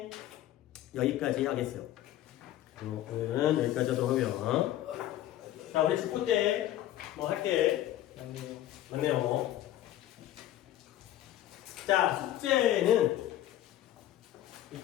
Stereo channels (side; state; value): right; quieter; 13.3 dB